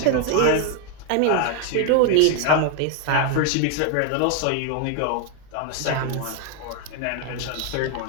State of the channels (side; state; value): both; different; correlation 0.01